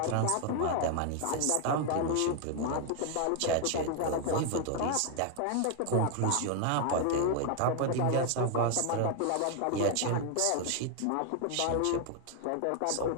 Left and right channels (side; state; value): both; different; correlation 0.00